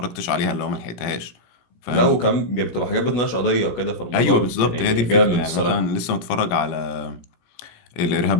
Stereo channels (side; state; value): right; late; 17 ms